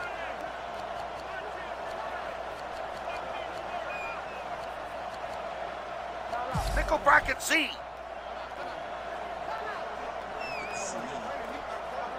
Nickel bracket Z.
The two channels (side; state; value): both; identical; correlation 1.00